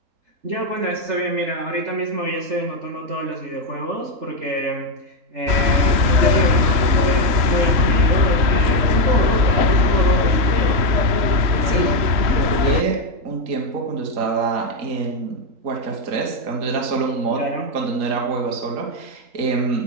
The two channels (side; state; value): left; late; 3.8 ms